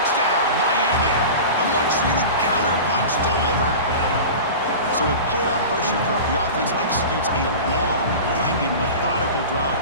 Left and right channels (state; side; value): inverted; both; correlation -0.32